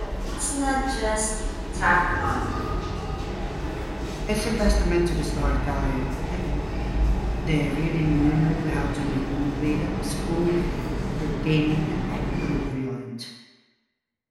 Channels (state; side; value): identical; both; correlation 1.00